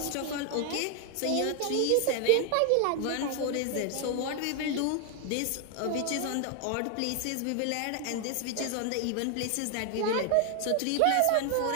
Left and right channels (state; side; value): different; both; correlation 0.00